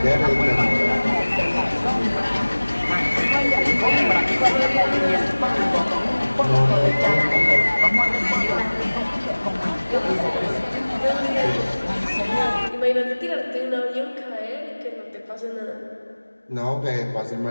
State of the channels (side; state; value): both; inverted; correlation -1.00